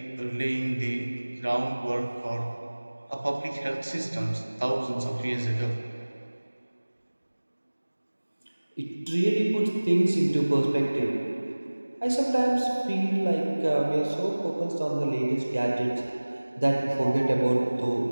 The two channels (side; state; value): both; inverted; correlation -1.00